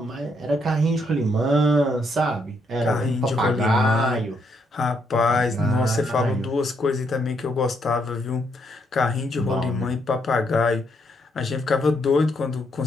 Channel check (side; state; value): both; normal; correlation 0.75